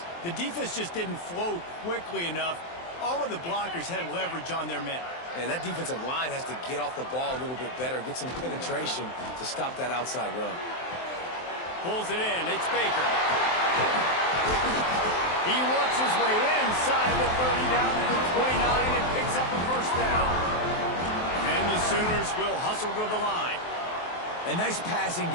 The defense just didn't flow quickly enough. All of the blockers had leverage on their men. And that defensive line has to get off the ball a little bit better, get some penetration to stop that outside run. Pulls it in. It's Baker. He works his way inside the 30 down to the 29 and picks up a first down. And the Sooners will hustle to the line. A nice passing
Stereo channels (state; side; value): late; right; 23 ms